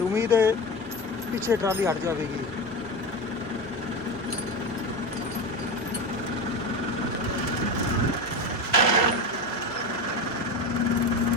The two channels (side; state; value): both; normal; correlation 0.22